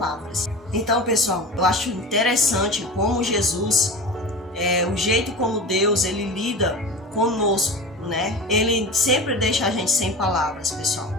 Então, pessoal, eu acho interessante como Jesus, o jeito como Deus, ele lida conosco, né? Ele sempre deixa a gente sem palavras, pessoal.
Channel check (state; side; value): normal; both; correlation 0.31